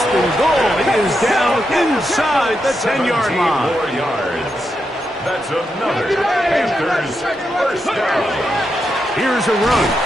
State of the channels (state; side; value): normal; both; correlation 0.84